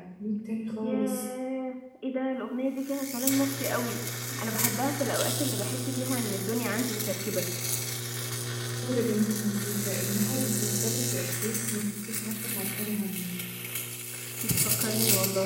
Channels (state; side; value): identical; both; correlation 1.00